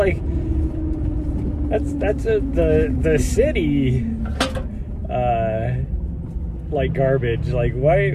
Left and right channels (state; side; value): identical; both; correlation 1.00